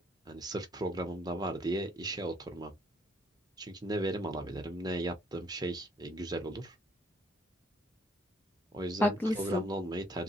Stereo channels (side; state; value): both; normal; correlation 0.65